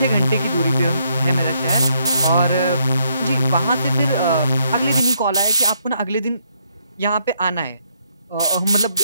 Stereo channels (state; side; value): inverted; both; correlation -0.73